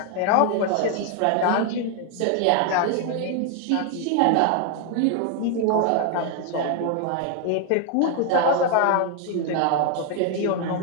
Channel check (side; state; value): both; different; correlation 0.00